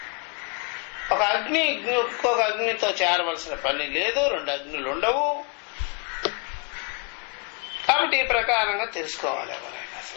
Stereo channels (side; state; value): right; quieter; 33.6 dB